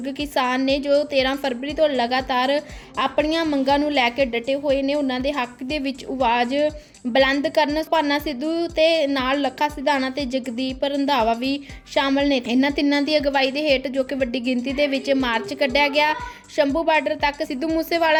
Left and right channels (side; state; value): both; identical; correlation 1.00